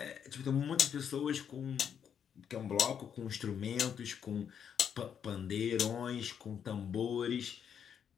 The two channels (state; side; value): quieter; right; 8.1 dB